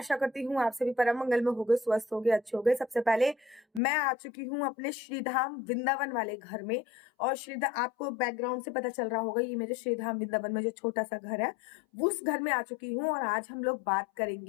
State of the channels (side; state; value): right; drops out; at 3.8 s